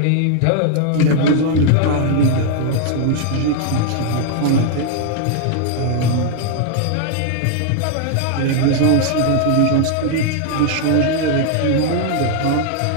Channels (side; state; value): both; different; correlation 0.00